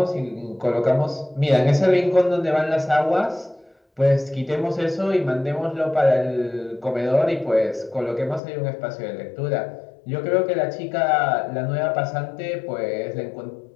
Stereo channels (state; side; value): drops out; right; at 8.4 s